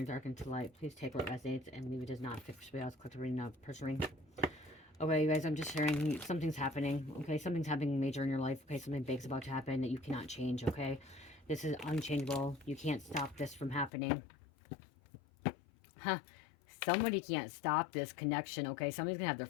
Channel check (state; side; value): drops out; right; at 13.9 s